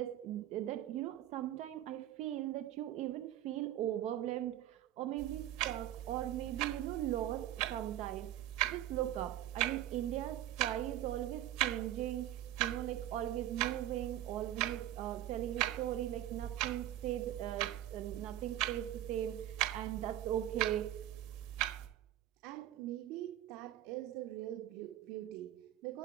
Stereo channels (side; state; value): left; quieter; 12.9 dB